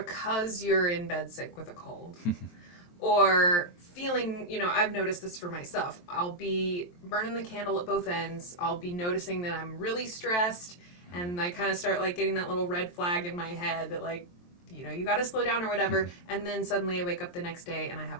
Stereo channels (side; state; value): right; late; 23 ms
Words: you're in bed sick with a cold, or feeling, I've noticed this for myself. I'll be burning the candle at both ends. I'll be noticing that I'm really stressed, and I kind of start getting that little red flag in my head that you got to slow down or whatever. And then suddenly I wake up the next day and I have